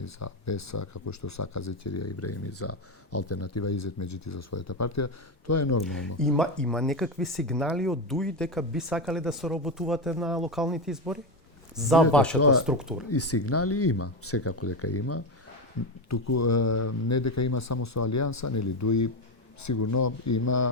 за Беса, како што сака Зекерија Ибраими за алтернатива Изетмеджити за својата партија, тоа е нормално. Има некакви сигнали од ДУИ дека би сакале да соработувате на локалните избори? За вашата структура? И сигнали има, секако дека има. Туку не дека има само со Алијанса, нели ДУИ сигурно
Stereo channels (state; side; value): normal; both; correlation 0.13